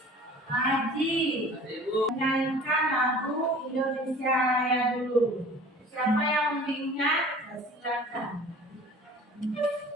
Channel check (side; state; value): both; normal; correlation 0.45